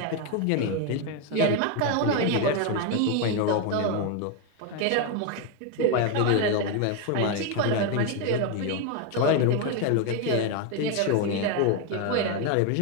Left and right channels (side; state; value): both; different; correlation 0.01